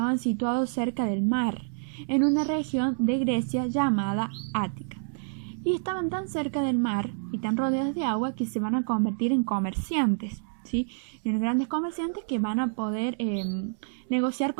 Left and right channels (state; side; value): silent; left; digital silence